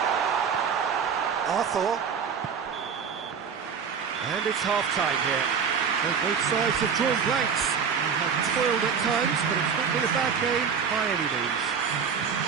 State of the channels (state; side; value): quieter; left; 6.6 dB